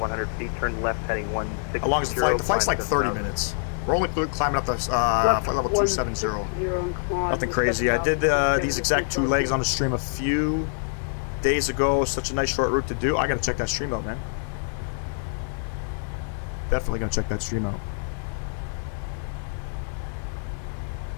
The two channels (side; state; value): right; silent; digital silence